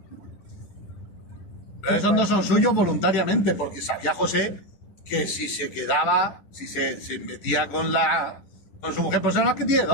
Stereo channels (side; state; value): right; late; 10 ms